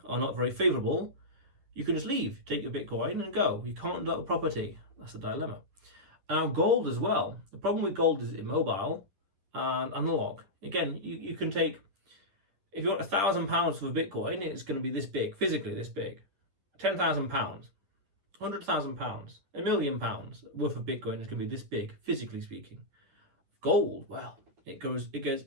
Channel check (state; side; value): late; left; 11 ms